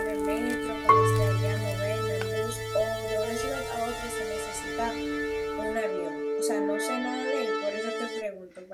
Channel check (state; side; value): identical; both; correlation 1.00